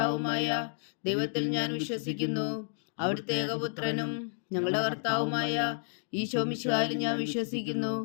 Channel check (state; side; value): silent; right; digital silence